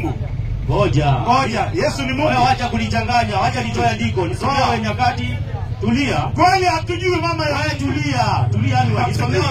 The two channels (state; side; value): identical; both; correlation 1.00